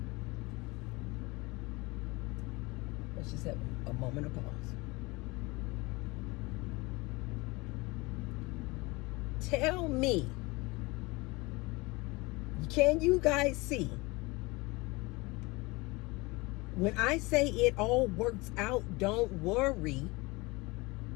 Let's just have a moment of pause. Tell me, can you guys see? When I say it all works out, don't worry.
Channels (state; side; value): quieter; right; 23.9 dB